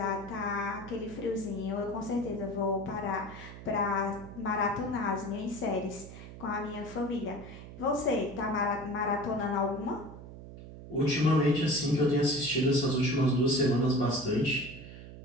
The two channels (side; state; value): right; noise; hum, 14 dB below the sound